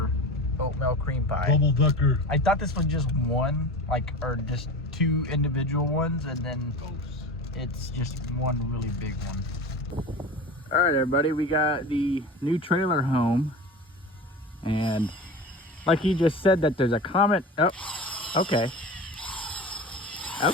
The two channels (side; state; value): both; normal; correlation 0.32